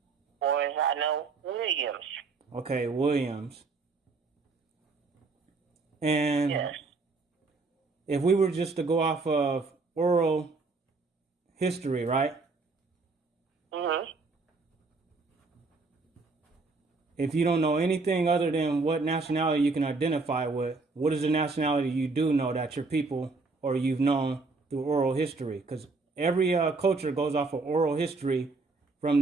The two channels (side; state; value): left; quieter; 3.9 dB